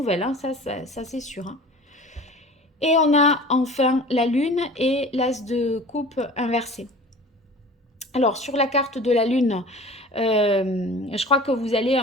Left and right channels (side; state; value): both; normal; correlation 0.42